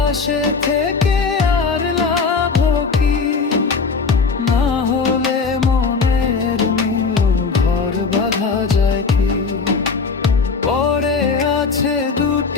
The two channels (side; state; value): right; quieter; 4.8 dB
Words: থেকে আর লাভ কি, না হলে মনের মিল ঘর বাঁধা যায় কি। পরে আছে